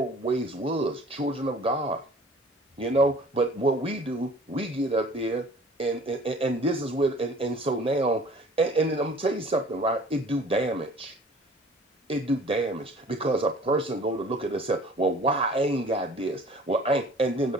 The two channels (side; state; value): both; normal; correlation 0.49